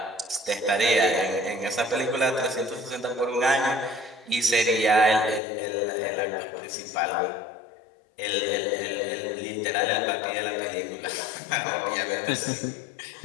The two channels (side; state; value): right; drops out; at 5.4 s